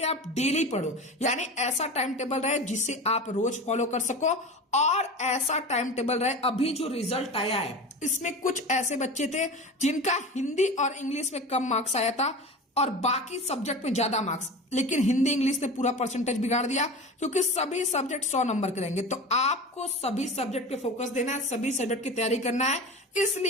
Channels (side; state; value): both; normal; correlation 0.32